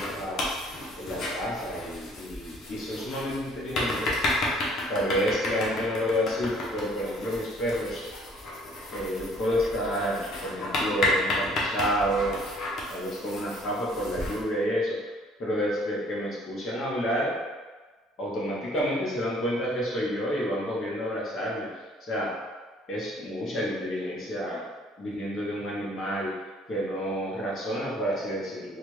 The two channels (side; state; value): both; normal; correlation 0.58